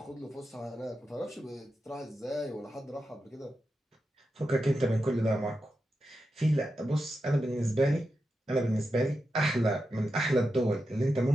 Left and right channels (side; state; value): both; normal; correlation 0.89